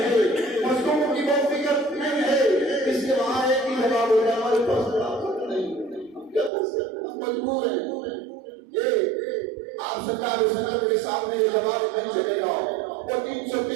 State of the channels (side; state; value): left; drops out; at 6.5 s